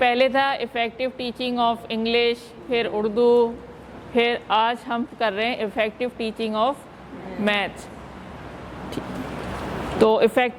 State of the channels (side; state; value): both; identical; correlation 1.00